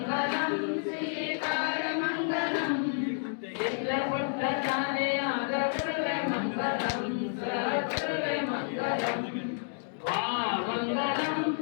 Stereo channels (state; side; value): silent; right; digital silence